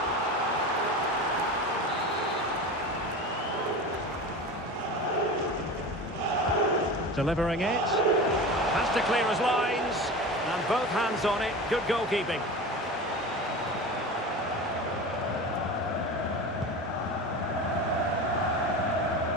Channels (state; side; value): normal; both; correlation 0.30